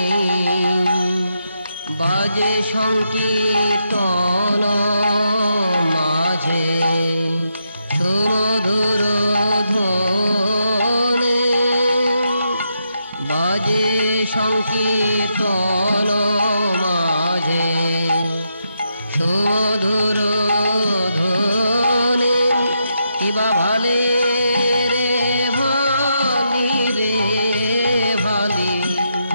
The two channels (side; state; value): both; inverted; correlation -0.82